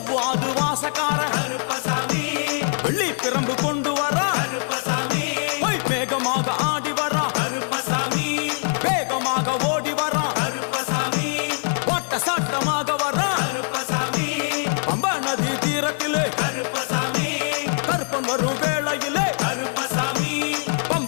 வாசக்கார கருப்பசாமி வெள்ளி பிரம்பு கொண்டு வரா கருப்பசாமி வேகமாக ஆடி வரா கருப்பசாமி வேகமாக ஓடி வரா கருப்பசாமி வாட்ட சாட்டமாக வரா கருப்பசாமி பம்பா நதி தீரத்திலே கருப்பசாமி கருப்பன் வரும் வேளையிலே கருப்பசாமி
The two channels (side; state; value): right; silent; 63 dB below the other